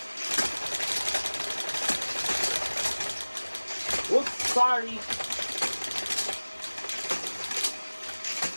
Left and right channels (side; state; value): both; inverted; correlation -1.00